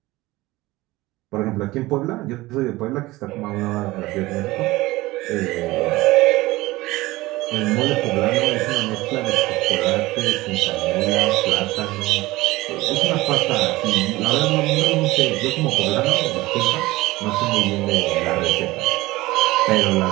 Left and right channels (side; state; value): left; quieter; 19.4 dB